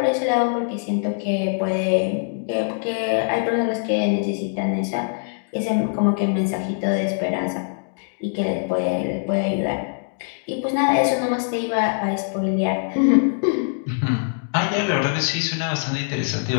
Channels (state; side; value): silent; right; digital silence